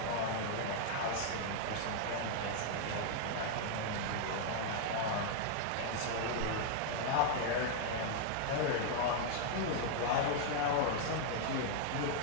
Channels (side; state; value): both; different; correlation 0.00